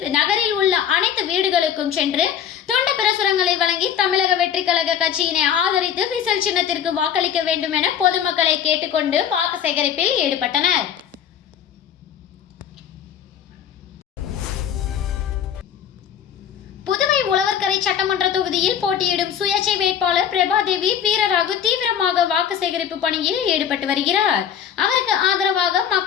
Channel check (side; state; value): right; quieter; 8.9 dB